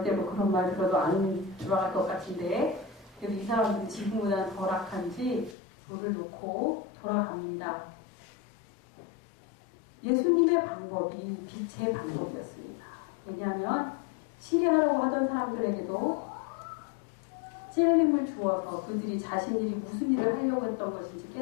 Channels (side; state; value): right; drops out; at 5.6 s